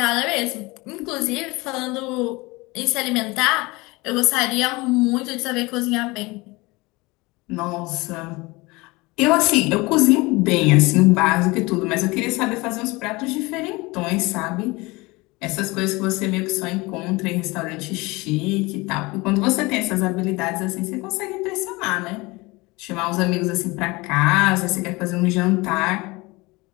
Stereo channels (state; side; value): quieter; right; 23.4 dB